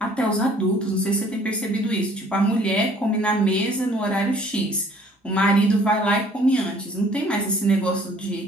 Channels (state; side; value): normal; both; correlation 0.57